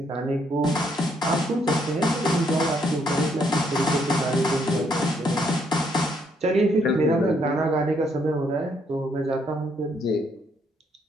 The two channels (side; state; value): both; normal; correlation 0.72